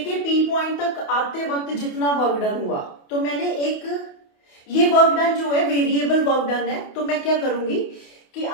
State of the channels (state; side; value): late; right; 28 ms